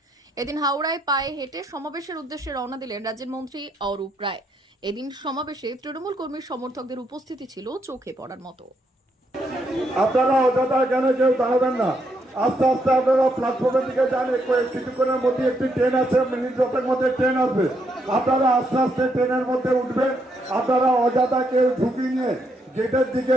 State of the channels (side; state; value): both; normal; correlation 0.76